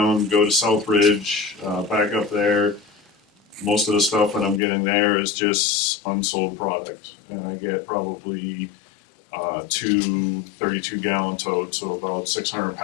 go to Southridge, back up there. Most of the stuff that I'm getting there is just unsold product, and I get probably 2 32-gallon totes, so about 600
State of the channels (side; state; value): right; drops out; at 4.6 s